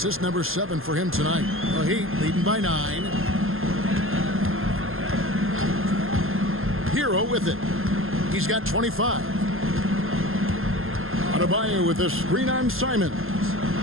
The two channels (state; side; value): late; left; 0.60 ms